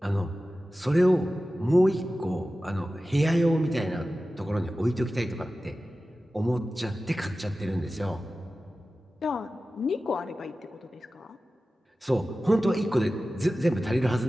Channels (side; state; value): both; normal; correlation 0.95